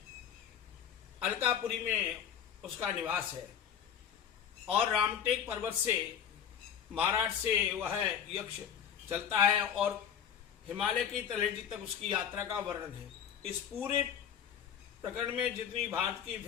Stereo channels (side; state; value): right; quieter; 8.6 dB